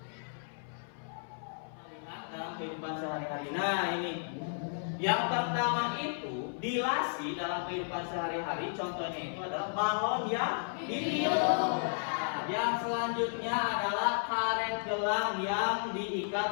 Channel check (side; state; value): right; silent; 55 dB below the other